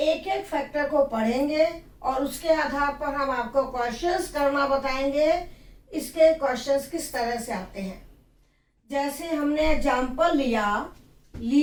एक फैक्टर को पढ़ेंगे और उसके आधार पर हम आपको क्वेश्चंस करना बताएंगे। इसके क्वेश्चंस किस तरह से आते हैं, जैसे हमने एग्जाम्पल लिया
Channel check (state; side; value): identical; both; correlation 1.00